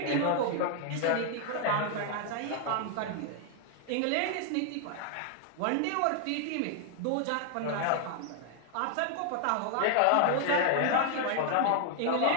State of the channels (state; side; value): different; both; correlation 0.00